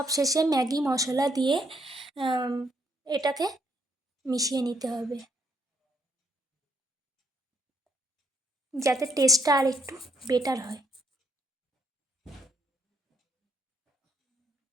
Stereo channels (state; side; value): normal; both; correlation 0.71